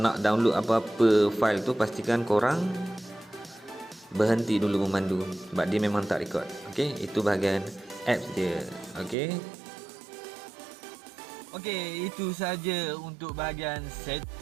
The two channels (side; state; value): left; drops out; at 9.2 s